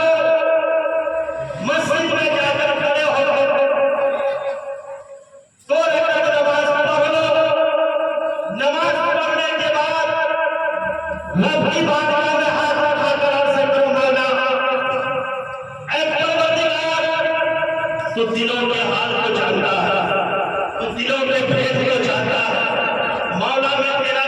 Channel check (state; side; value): identical; both; correlation 1.00